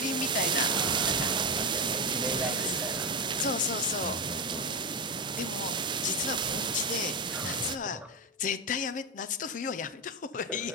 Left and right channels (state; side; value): normal; both; correlation 0.13